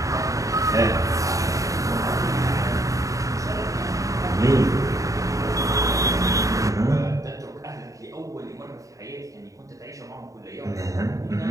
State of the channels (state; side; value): late; left; 0.16 ms